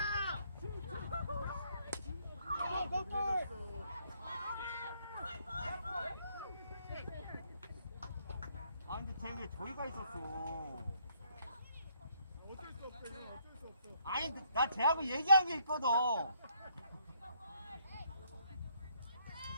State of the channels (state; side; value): inverted; both; correlation -0.69